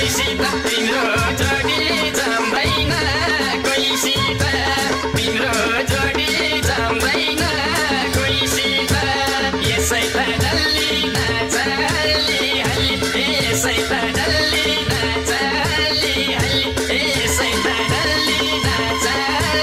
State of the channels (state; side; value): identical; both; correlation 1.00